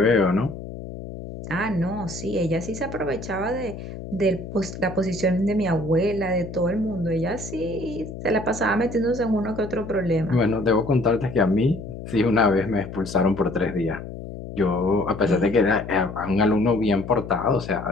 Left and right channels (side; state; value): left; noise; hum, 10 dB below the sound